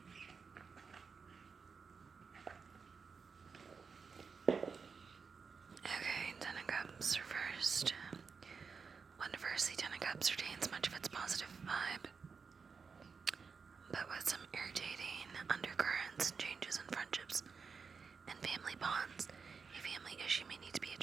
in. Okay, Ten of Cups reversed. When reversed, the Ten of Cups retains much of its positive vibe, but with some irritating undercurrents and changes in friendships and family bonds. A family issue may need to be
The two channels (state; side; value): quieter; left; 5.4 dB